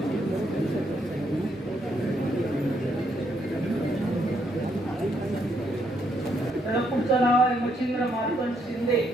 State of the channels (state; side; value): normal; both; correlation 0.74